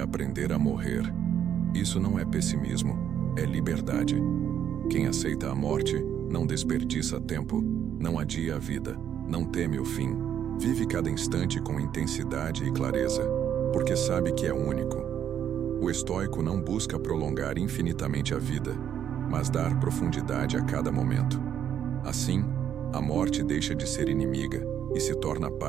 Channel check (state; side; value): quieter; left; 9.4 dB